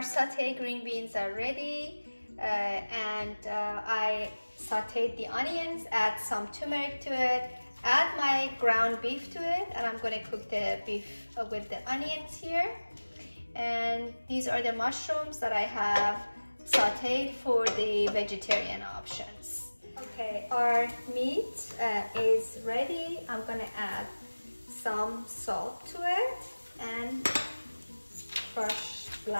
green beans are ready. I sauteed the onions, add some turmeric to it, add my ground beef to it, and I'm going to cook the beef with the onions here. And these are the mushrooms that I have sauteed for the vegetarian options. Okay, our meat is ready. I'm going to add some salt to it and crushed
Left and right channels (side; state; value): both; inverted; correlation -1.00